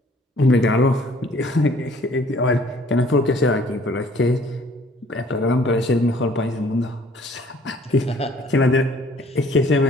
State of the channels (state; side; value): normal; both; correlation 0.57